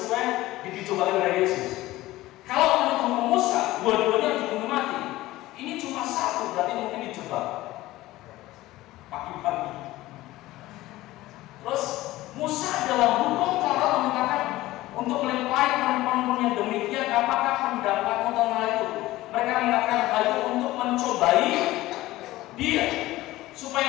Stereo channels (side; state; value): right; quieter; 17.2 dB